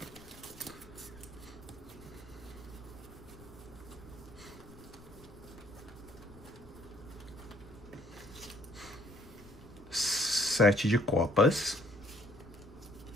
Sete de copas.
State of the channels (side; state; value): left; noise; rumble, 20 dB below the sound